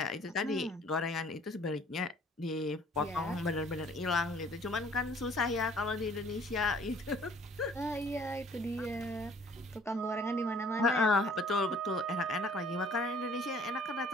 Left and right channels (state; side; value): normal; both; correlation 0.56